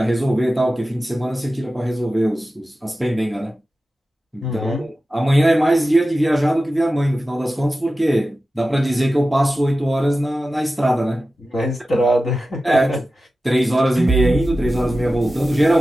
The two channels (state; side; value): normal; both; correlation 0.94